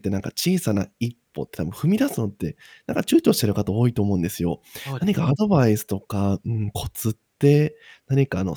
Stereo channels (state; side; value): identical; both; correlation 1.00